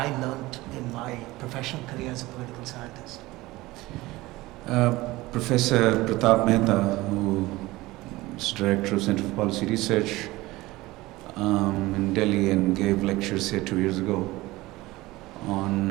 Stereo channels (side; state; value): left; quieter; 19.4 dB